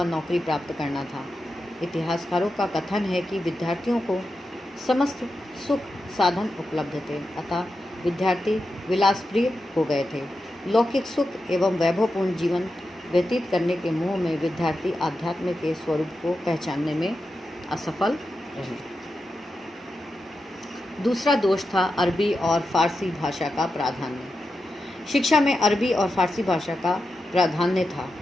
नौकरी प्राप्त करना था। इतिहासकारों का कथन है कि विद्यार्थियों को समस्त सुख साधन उपलब्ध थे, अतः विद्यार्थी विलासप्रिय हो गए थे। लौकिक सुख एवं वैभवपूर्ण जीवन व्यतीत करने के मोह में विद्यार्थी आध्यात्म के स्वरूप को पहचानने में असफल रहे। दूसरा दोष था अरबी और फारसी भाषा का प्राधान्य। शिक्षा में अरबी और फारसी भाषा का प्राधान्य था,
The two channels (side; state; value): both; normal; correlation 0.89